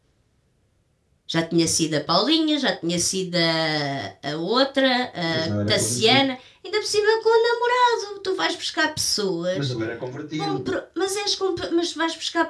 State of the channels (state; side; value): identical; both; correlation 1.00